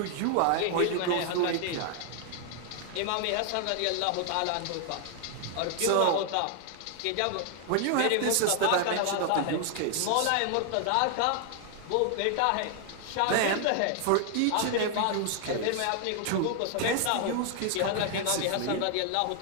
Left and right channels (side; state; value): both; different; correlation 0.00